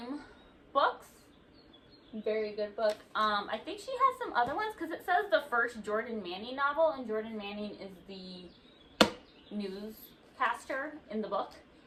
books, very good book. I think she has some other ones because it says the first Jordan Manning novel, and Jordan Manning is the newscaster in the book.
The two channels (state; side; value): identical; both; correlation 1.00